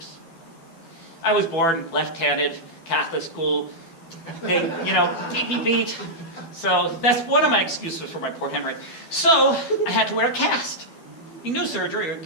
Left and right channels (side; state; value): right; late; 12 ms